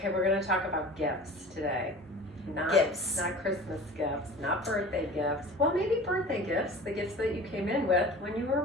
we're going to talk about gifts today. Gifts. Not Christmas gifts, not birthday gifts. Well, maybe birthday gifts, the gifts that you came in with when you were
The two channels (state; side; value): normal; both; correlation 0.40